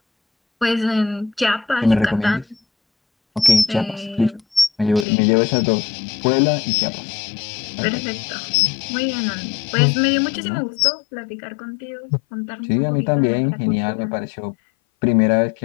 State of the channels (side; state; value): right; drops out; at 5.1 s